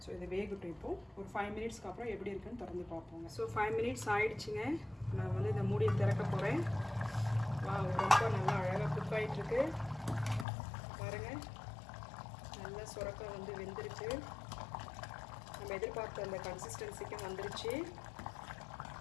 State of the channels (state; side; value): drops out; right; at 10.5 s